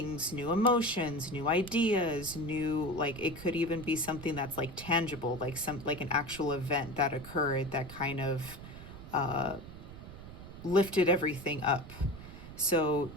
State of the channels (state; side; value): noise; right; rumble, 14 dB below the sound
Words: new emotions, new ideas, like it could even be something that's like tangible, like an actual event that occurred that kind of lifted everything up. So